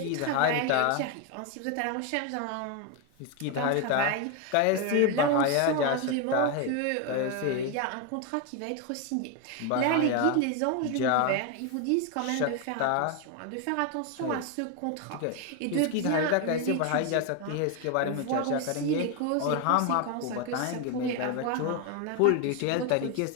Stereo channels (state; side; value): different; both; correlation 0.01